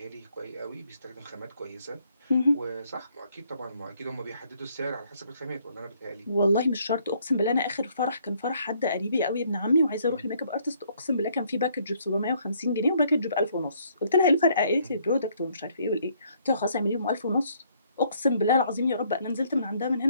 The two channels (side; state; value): both; inverted; correlation -0.67